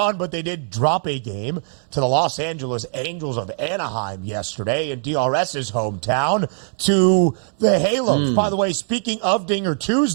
but they did drop a game to the Los Angeles Angels of Anaheim yesterday in DRS's hometown to the Halos. By the way, speaking of Dinger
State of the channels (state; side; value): silent; left; digital silence